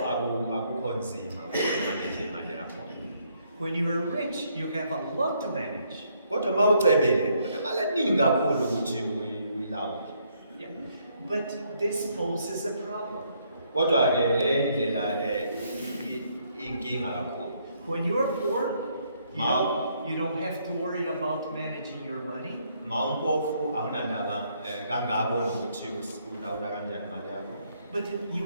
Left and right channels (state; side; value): inverted; both; correlation -0.71